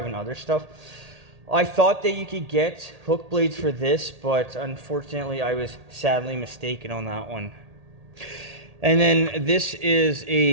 and other stuff. I thought that you could get hook blades for this, but unfortunately I was sadly mistaken on that one. And then this is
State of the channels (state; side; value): late; left; 1.8 ms